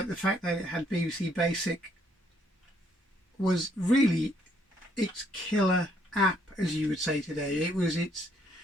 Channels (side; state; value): both; normal; correlation 0.69